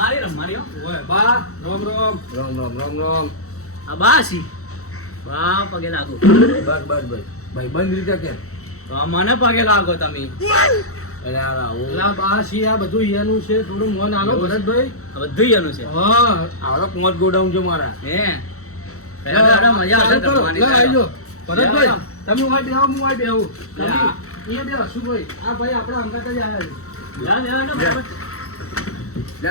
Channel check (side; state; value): right; late; 0.64 ms